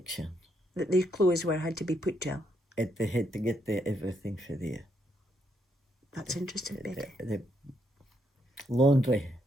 That their clothes had to be put to? They had to get everything for there. That's interesting, Betty. The laundry.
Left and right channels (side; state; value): both; normal; correlation 0.76